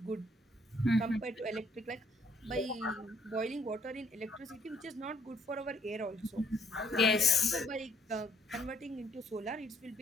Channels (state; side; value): normal; both; correlation 0.68